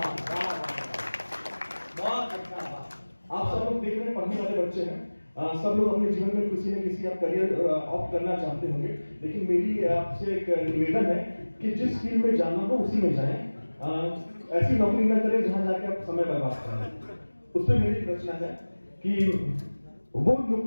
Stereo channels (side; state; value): both; inverted; correlation -1.00